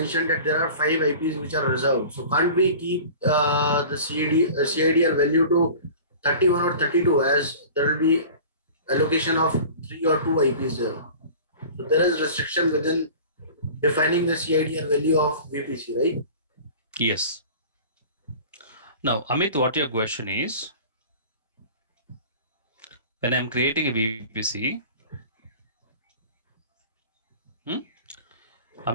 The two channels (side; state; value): both; inverted; correlation -0.40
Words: that there are 5 IPs which are reserved. So can't we keep the CIDR value to 31 or 32 as there will be allocation of 3 or 2 IPs there. So there is restriction within defining the CIDR value of VPC, right? Yes. Now, Amit, what your question is, when I'm creating a VPC,